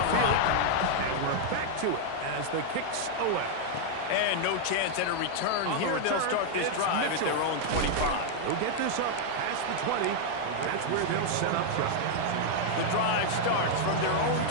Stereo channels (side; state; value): both; different; correlation 0.00